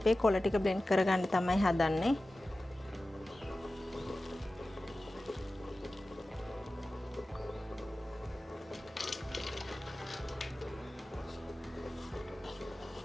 කොළ ටික බ්ලෙන්ඩ් කරගන්න තමයි හදන්නේ.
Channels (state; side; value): normal; both; correlation 0.96